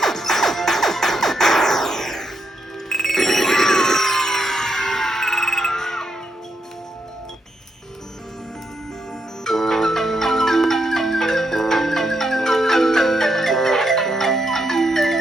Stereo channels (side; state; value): both; normal; correlation 0.80